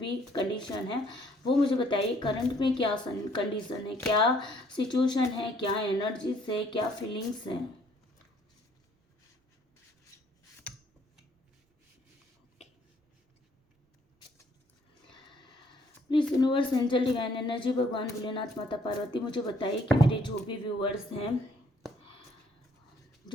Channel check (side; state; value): both; normal; correlation 0.64